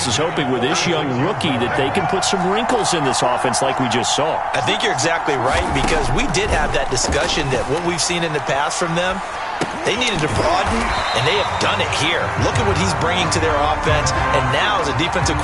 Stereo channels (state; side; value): identical; both; correlation 1.00